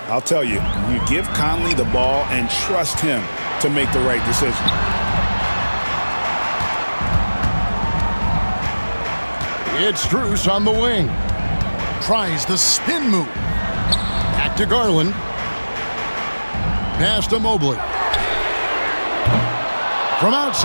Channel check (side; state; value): both; inverted; correlation -1.00